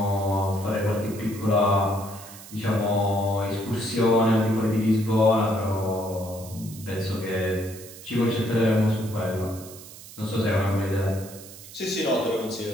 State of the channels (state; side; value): noise; right; hiss, 17 dB below the sound